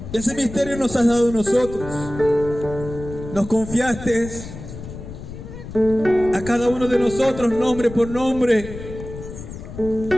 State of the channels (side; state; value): left; noise; rumble, 12 dB below the sound